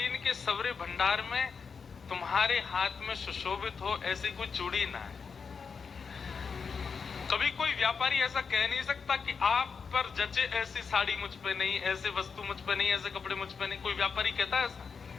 के सवरे भंडार में तुम्हारे हाथ में सुशोभित हो ऐसी कोई चूड़ी ना है। कभी कोई व्यापारी ऐसा कह नहीं सकता कि आप पर जचे ऐसी साड़ी मुझ पे नहीं, ऐसे वस्तु मुझ पे नहीं, ऐसे कपड़े मुझ पे नहीं। कोई व्यापारी कहता है ऐसा?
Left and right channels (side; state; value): right; quieter; 5.7 dB